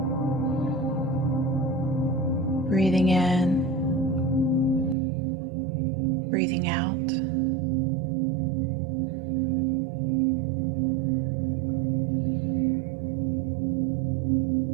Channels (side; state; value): left; drops out; at 5.0 s